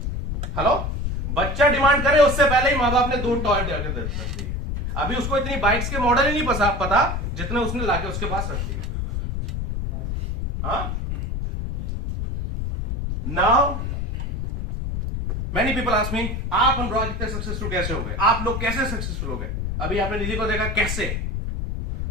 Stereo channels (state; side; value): noise; left; rumble, 3 dB below the sound